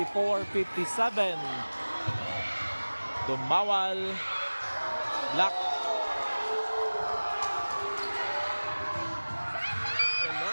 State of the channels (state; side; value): inverted; both; correlation -1.00